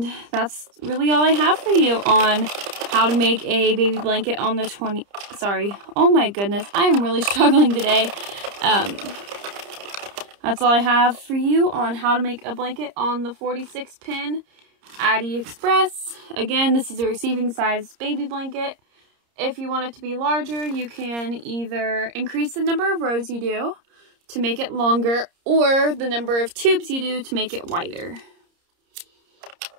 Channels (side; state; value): left; late; 30 ms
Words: that's really all I have for you on how to make a baby blanket on the oh my goodness, I am really struggling today. That's all I have for you on how to make a blanket on the 46 pin Addi Express. Again, this is a receiving size baby blanket. if you want it to be larger, you can either increase the number of rows you do to make it longer, or the number of tubes you do to make it wider.